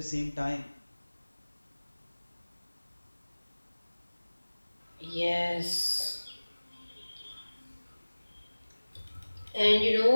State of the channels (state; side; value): inverted; both; correlation -1.00